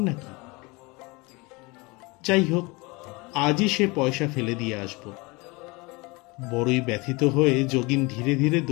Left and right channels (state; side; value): quieter; right; 25.5 dB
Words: নাকি? যাই হোক, আজই সে পয়সা ফেলে দিয়ে আসব। বড়ই ব্যথিত হয়ে যোগিন ধীরে ধীরে